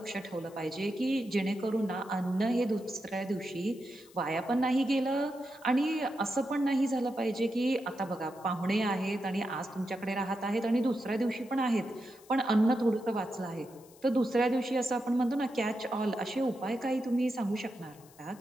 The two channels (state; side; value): noise; left; hiss, 25 dB below the sound